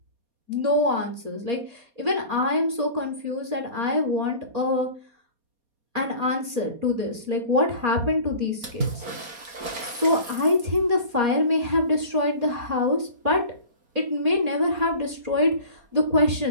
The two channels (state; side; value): late; left; 4.2 ms